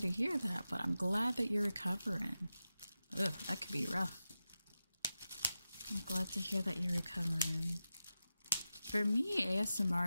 hear that, but I'm glad that you're recovering. Ugh, that could be rough. I'm glad to hear that you're recovering. For me, ASMR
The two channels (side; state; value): both; inverted; correlation -0.92